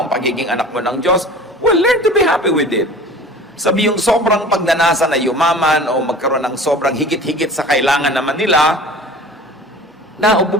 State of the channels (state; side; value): normal; both; correlation 0.41